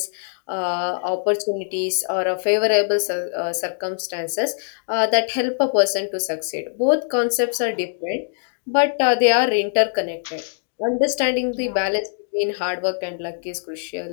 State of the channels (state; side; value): silent; right; digital silence